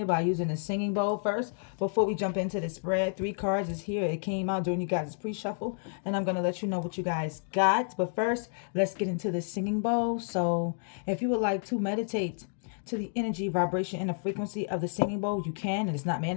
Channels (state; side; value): silent; right; digital silence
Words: by using a singing bowl first. Before we jump into the spread, 3 cards is here. It came out during you guys' pre-shuffle, and I'm going to let you know what you guys got. But first, let's get into the singing bowl. So if you would like to meditate to the energy, vibration, and the frequency of the singing bowl, you can. And it's not